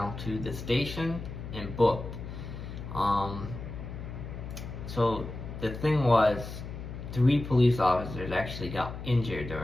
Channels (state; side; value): noise; left; hum, 9 dB below the sound